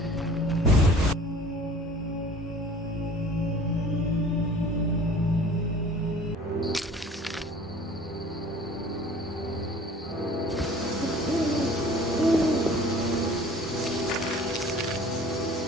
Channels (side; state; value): both; normal; correlation 0.48